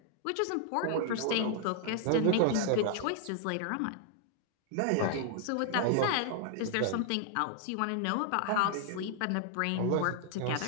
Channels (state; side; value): different; both; correlation 0.00